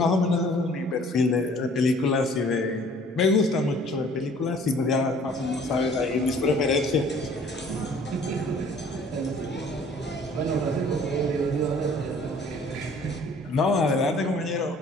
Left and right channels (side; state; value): both; normal; correlation 0.54